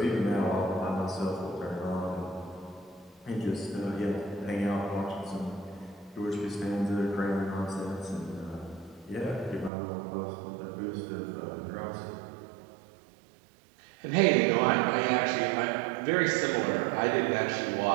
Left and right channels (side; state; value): left; drops out; at 9.7 s